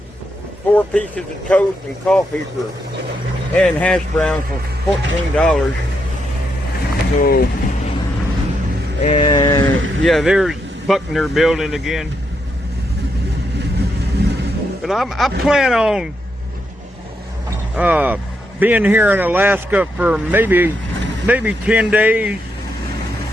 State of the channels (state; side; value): normal; both; correlation 0.81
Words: 4 pieces of toast, and coffee and hash browns for $14. So, and yeah, there's Buckner Building again. But I plan on being here in Alaska for maybe 10 days,